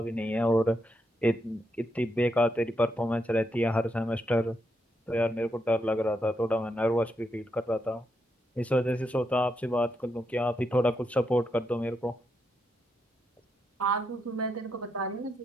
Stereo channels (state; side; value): normal; both; correlation 0.81